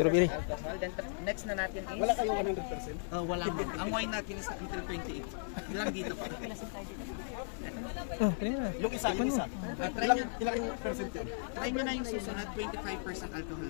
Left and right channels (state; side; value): silent; right; 54 dB below the other